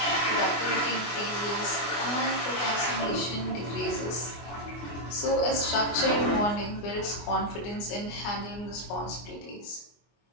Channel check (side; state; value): right; late; 24 ms